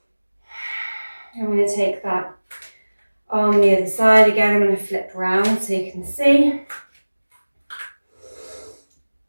I'm going to take that on the other side again. I'm going to flip around so you can see.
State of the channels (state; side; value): inverted; both; correlation -1.00